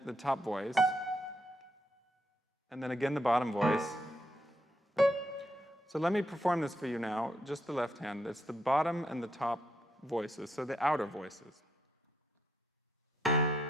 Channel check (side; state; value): both; normal; correlation 0.77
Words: the top voice, and then again the bottom voice. So let me perform this for you now, just the left hand. It's the bottom and the top voices, so the outer voices.